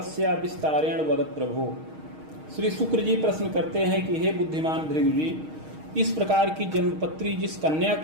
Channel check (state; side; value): late; left; 6.4 ms